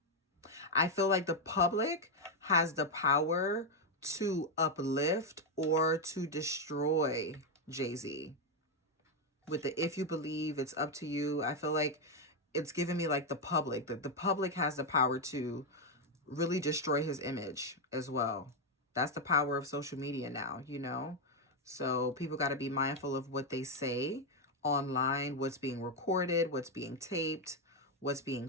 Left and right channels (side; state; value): both; normal; correlation 0.03